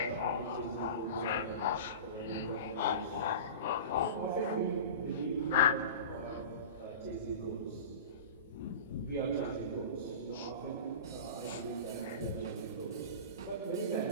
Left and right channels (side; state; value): both; inverted; correlation -0.33